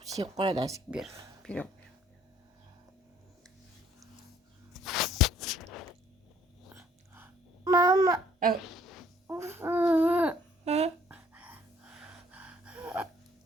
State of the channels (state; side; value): normal; both; correlation 0.61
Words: şey koyarız bir. Mama.